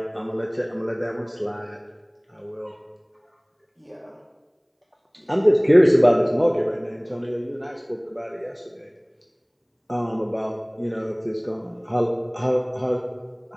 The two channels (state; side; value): identical; both; correlation 1.00